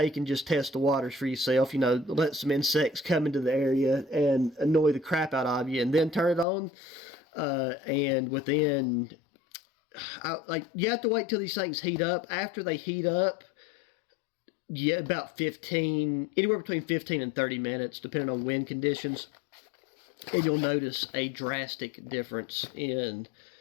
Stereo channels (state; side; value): drops out; right; at 6.5 s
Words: and just test the waters for yourself, let some insects come into the area and annoy the crap out of you and then turn it on. And within, you have to wait till these things heat up. After they heat up, about anywhere between 15 and 30 minutes, depending on wind conditions. And you'll notice a drastic difference in